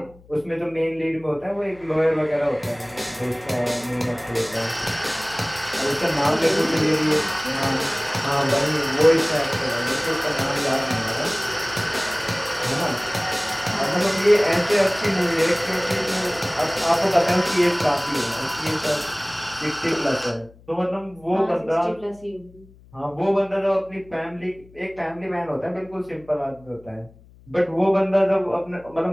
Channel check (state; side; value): noise; left; hum, 25 dB below the sound